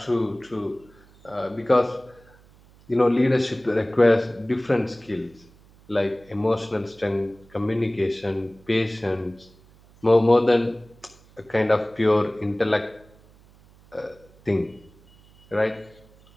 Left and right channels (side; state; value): right; noise; hum, 27 dB below the sound